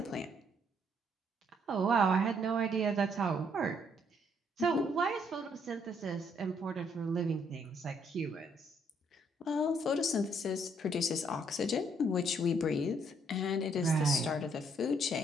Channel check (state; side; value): normal; both; correlation 0.69